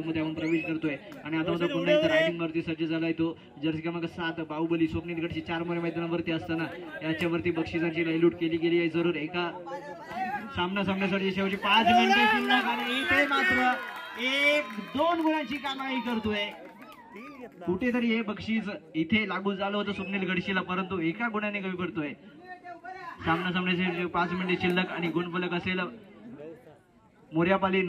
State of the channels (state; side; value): identical; both; correlation 1.00